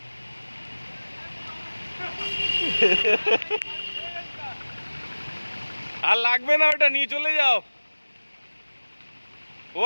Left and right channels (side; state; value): both; inverted; correlation -1.00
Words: আর লাগবে না, ওটা নিয়ে চলে যাও। ও